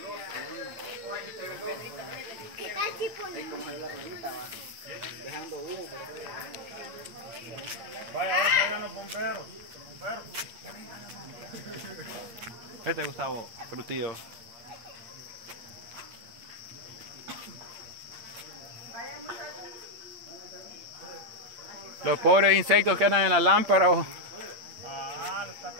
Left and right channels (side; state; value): left; late; 8.7 ms